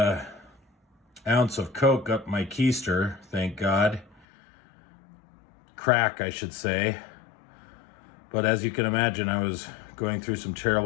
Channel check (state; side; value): drops out; right; at 4.2 s